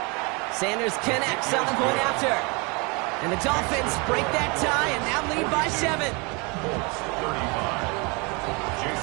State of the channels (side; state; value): left; quieter; 29.6 dB